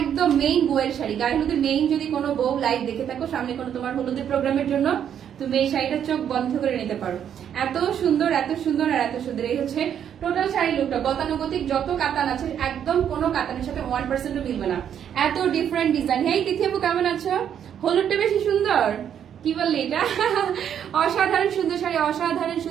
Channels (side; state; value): left; quieter; 9.1 dB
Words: মেইন বউয়ের শাড়ি, গায়ে হলুদের মেইন যদি কোনো বউ লাইভ দেখে থাকো সামনে কোনো তোমার হলুদের প্রোগ্রামের জন্য, তুমি এই শাড়িটা চোখ বন্ধ করে নিতে পারো। এত সুন্দর আর এত সুন্দর। এই হচ্ছে টোটাল শাড়ি লুকটা। গতানুগতিক যত কাতান আছে একদম কোনো কাতানের সাথে 1% মিলবে না, এত ডিফারেন্ট ডিজাইন। হেই তিথি আপু কেমন আছো? হলুদটা বেশি সুন্দর, কি বললি এটা? অসাধারণ সুন্দর শাড়ি, অসাধারণ